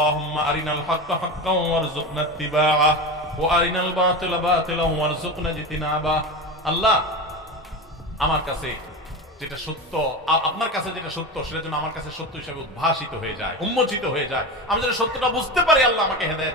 আরিনাল হাক্কা হাক্কান ওয়ারযুকনা ইত্তিবাআ ওয়া আরিনাল বাতিলা বাতিলান ওয়ারযুকনা ইজতিনাবা। আল্লাহ, আমার কাছে যেটা সত্য, আপনার কাছে যেটা সত্য, সেটা যেন আমার কাছে সত্য হিসেবে উদ্ভাসিত হয়ে যায়, উন্মোচিত হয়ে যায়। আমি যেন সত্যটা বুঝতে পারি। আল্লাহ আমাকে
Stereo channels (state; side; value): normal; both; correlation 0.24